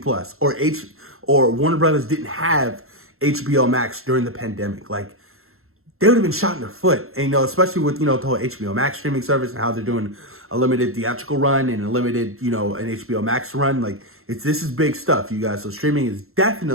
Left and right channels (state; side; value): late; left; 0.62 ms